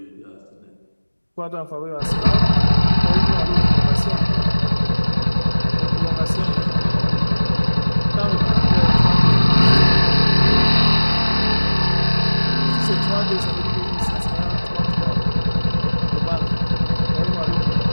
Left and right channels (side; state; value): both; inverted; correlation -1.00